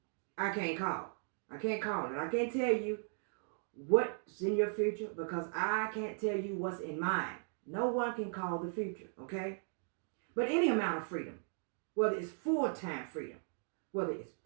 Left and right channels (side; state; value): left; silent; 53 dB below the other